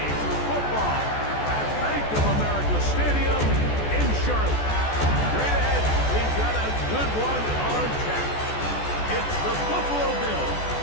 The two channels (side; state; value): right; late; 14 ms